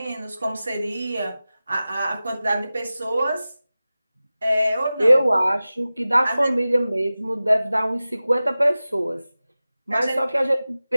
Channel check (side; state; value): both; inverted; correlation -0.96